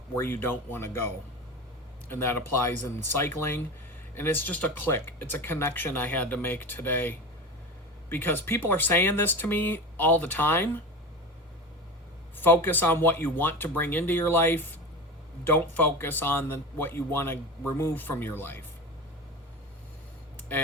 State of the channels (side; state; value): both; normal; correlation 0.28